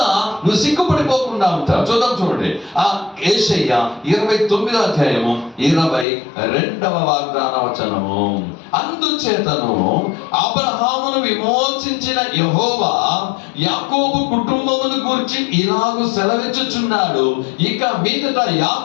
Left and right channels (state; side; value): drops out; right; at 6.1 s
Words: నువ్వు సిగ్గుపడిపోకుండా ఉంటావు. చూడండి ఆ యేషయ్య 29వ అధ్యాయము 22వ వాగ్దాన వచనము. అందుచేతను అబ్రహామును విమోచించిన యెహోవా యాకోబు కుటుంబమును గూర్చి ఇలాగు సెలవిచ్చుచున్నాడు, ఇక మీదట